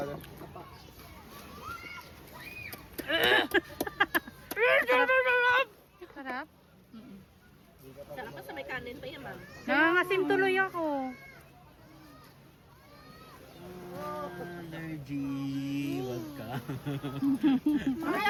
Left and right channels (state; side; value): identical; both; correlation 1.00